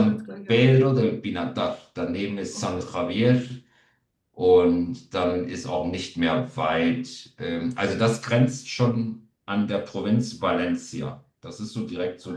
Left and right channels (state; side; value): identical; both; correlation 1.00